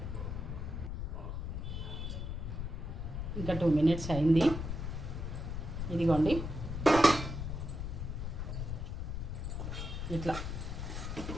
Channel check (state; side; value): noise; left; rumble, 4 dB below the sound